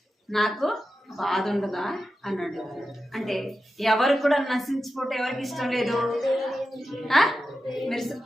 నాకు బాధ ఉండదా అన్నాడు. అంటే ఎవరు కూడా నశించిపోతే ఎవరికి ఇష్టం లేదు. మీరు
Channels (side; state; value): both; normal; correlation 0.91